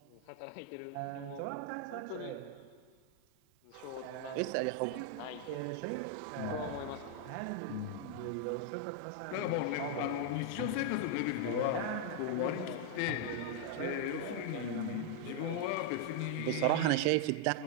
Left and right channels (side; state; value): both; different; correlation 0.00